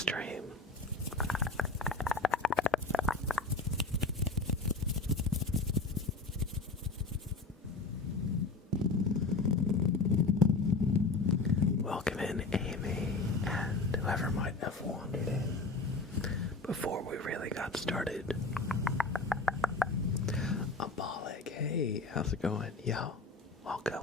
Welcome in, Amy, and whoever might have wandered in before we really got started. Abolic, hey, how's it going? Yo,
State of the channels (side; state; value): right; quieter; 3.7 dB